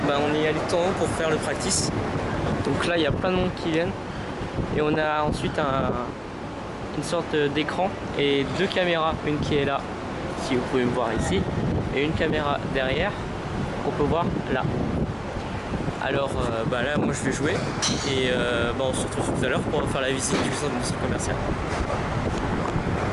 bah, on est allé tout en haut pour faire le practice. Donc là il y a plein de monde qui viennent et on a ensuite une sorte d'écran et 2 caméras, une qui est là, si vous pouvez me voir ici, et une caméra derrière qu'on peut voir là. Alors bah là moi je vais jouer et bah, on se retrouve tout à l'heure pour faire la visite du centre commercial.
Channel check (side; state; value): both; identical; correlation 1.00